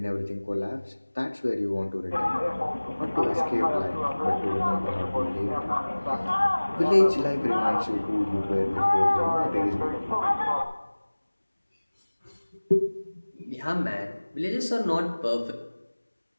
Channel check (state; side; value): inverted; both; correlation -1.00